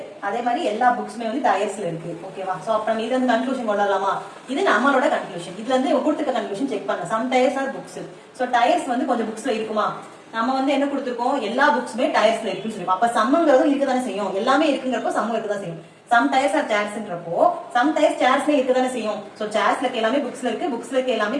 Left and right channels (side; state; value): both; identical; correlation 1.00